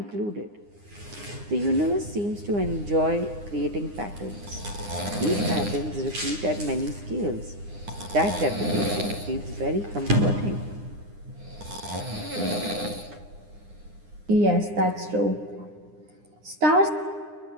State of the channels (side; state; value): left; late; 9.8 ms